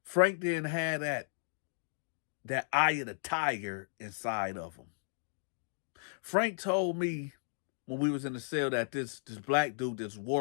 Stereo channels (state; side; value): silent; right; digital silence